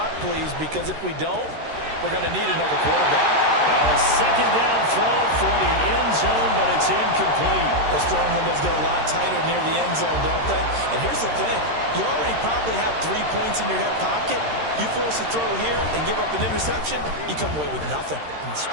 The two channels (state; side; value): late; left; 13 ms